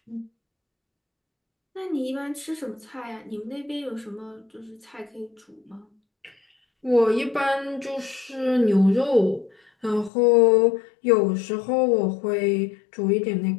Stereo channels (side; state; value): right; drops out; at 10.1 s